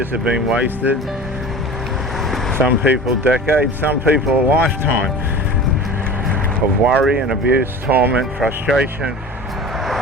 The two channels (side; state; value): both; normal; correlation 0.36